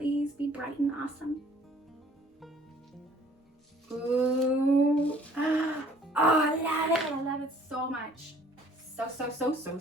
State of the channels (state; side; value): normal; both; correlation 0.56